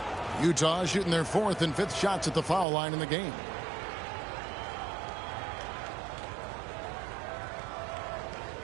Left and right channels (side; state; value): left; drops out; at 2.7 s